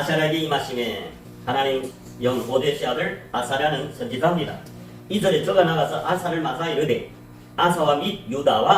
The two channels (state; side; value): identical; both; correlation 1.00